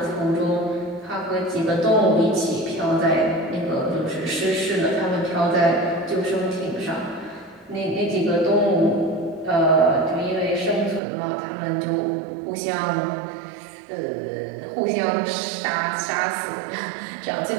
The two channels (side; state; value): left; drops out; at 11.0 s